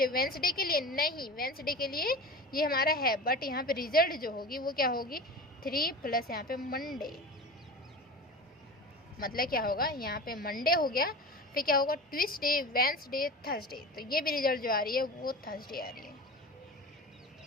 वेंसडे के लिए नहीं, वेंसडे के लिए ये हमारा है, बट यहाँ पे रिजल्ट जो होगी वो क्या होगी 3 प्लस यहाँ पे मंडे। मतलब क्या होगा, यहाँ पे मंडे हो गया, फिर क्या होगा ट्यूसडे वेंसडे थर्सडे। तो ये भी रिजल्ट जो आ रही है वो थर्सडे आ रही है।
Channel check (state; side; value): normal; both; correlation 0.32